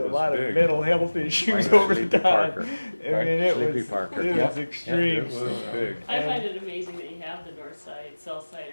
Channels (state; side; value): inverted; both; correlation -1.00